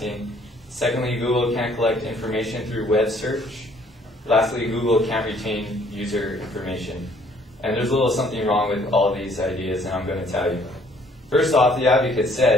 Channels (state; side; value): normal; both; correlation 0.61